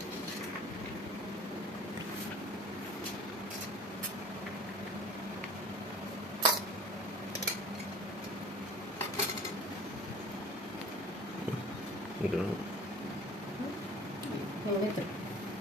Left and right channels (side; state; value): both; normal; correlation 0.45